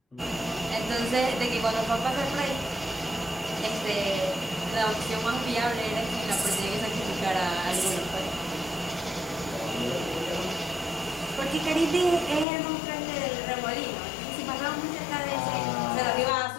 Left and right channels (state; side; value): drops out; right; at 12.5 s